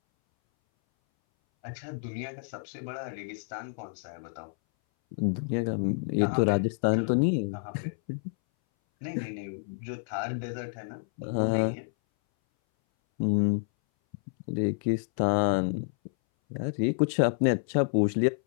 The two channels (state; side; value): silent; right; 58 dB below the other